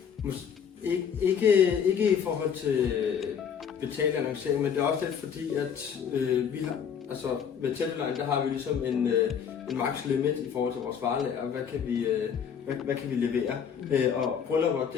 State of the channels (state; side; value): quieter; right; 7.6 dB